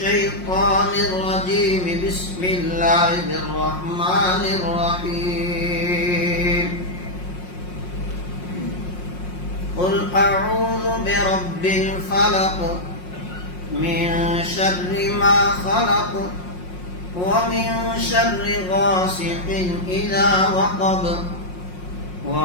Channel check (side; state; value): right; late; 5.6 ms